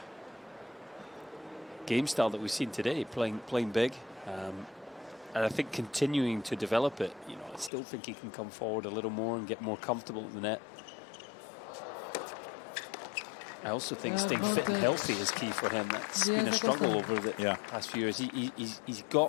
game style that we've seen today, playing big, and I think continuing to develop it. You know, I still think he can come forward a little more and get more comfortable at the net. I also think staying fit and healthy is key for him. That's been a struggle over the past few years. He's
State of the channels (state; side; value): drops out; right; at 7.7 s